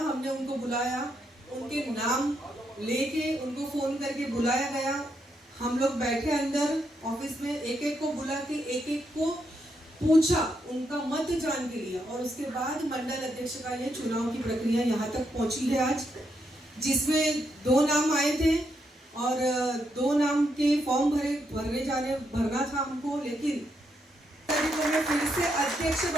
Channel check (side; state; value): both; normal; correlation 0.79